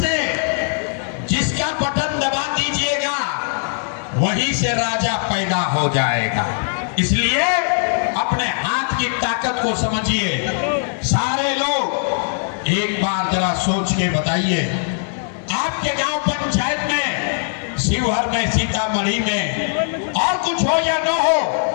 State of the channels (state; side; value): silent; right; 66 dB below the other